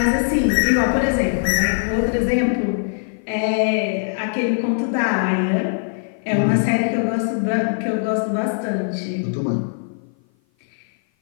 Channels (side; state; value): right; silent; 56 dB below the other